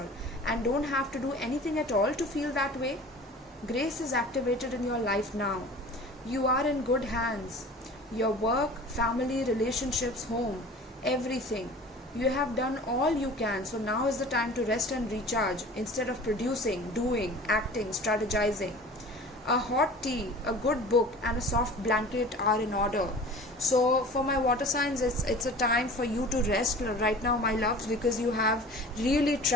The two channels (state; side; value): normal; both; correlation 0.41